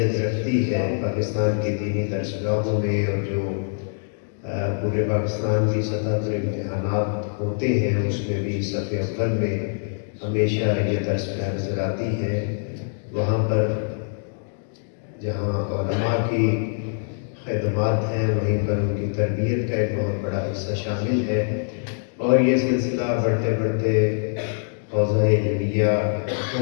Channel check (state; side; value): silent; right; digital silence